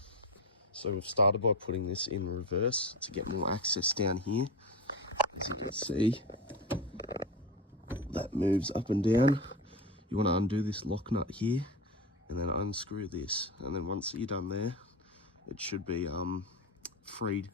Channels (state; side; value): normal; both; correlation 0.22